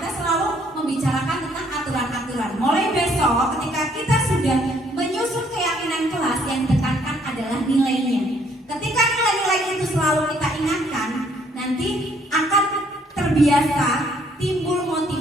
selalu membicarakan tentang aturan-aturan. Mulai besok ketika kita sudah menyusun keyakinan kelas, yang ditekankan adalah nilainya. Ketika nilai-nilai itu selalu kita ingatkan, nanti akan terbiasa timbul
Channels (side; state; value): both; normal; correlation 0.65